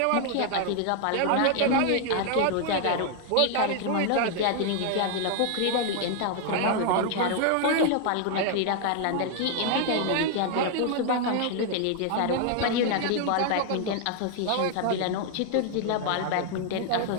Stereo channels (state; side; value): different; both; correlation 0.00